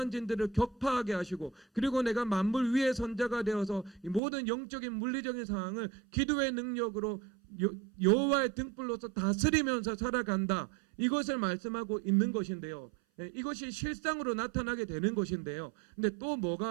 진들을 격파하게 하시고, 그리고 내가 만물 위의 선자가 되어서 이 모든 영적인 물리적인 상황을 기도의 능력으로 여호와의 등불로서 다스리면서 살아간다, 이것을 말씀하고 있는 것인데요. 이것이 실상으로 나타나게 되는 것인데요. 근데 또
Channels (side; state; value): left; drops out; at 4.2 s